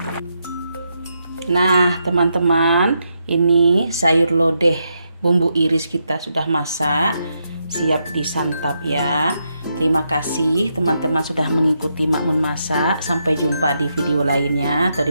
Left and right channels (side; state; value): both; inverted; correlation -0.82